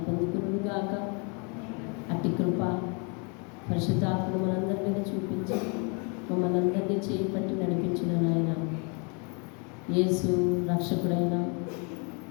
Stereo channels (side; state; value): right; quieter; 34.8 dB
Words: పొందుకునుగాక. అట్టి కృప పరిశుద్ధాత్మను మనందరి మీద చూపించి మమ్మల్ని అందరినీ చేపట్టి నడిపించిన నాయన యేసు రక్షకుడైన